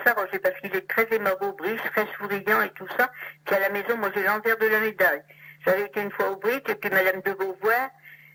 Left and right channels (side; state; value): both; identical; correlation 1.00